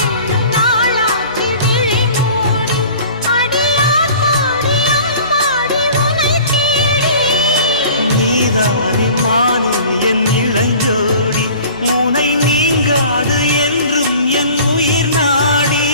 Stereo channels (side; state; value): both; inverted; correlation -0.45